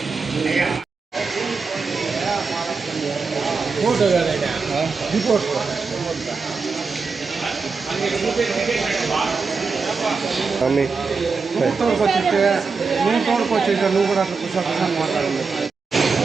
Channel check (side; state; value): left; quieter; 4.7 dB